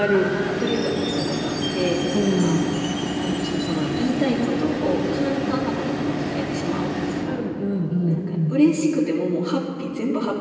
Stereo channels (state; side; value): identical; both; correlation 1.00